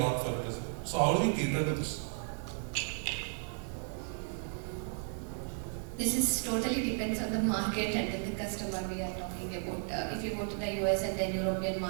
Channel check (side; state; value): left; silent; 55 dB below the other